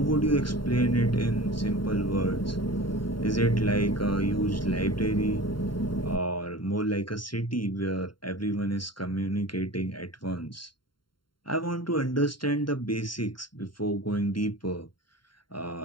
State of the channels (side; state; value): right; late; 0.72 ms